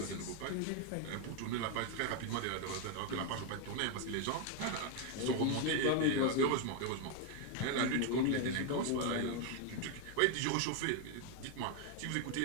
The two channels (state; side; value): different; both; correlation 0.01